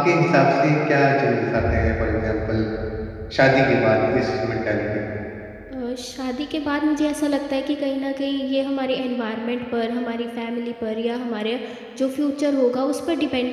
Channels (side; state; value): both; identical; correlation 1.00